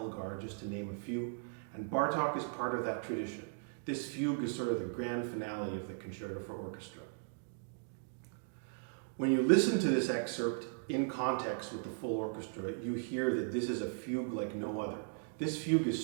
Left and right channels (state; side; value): silent; left; digital silence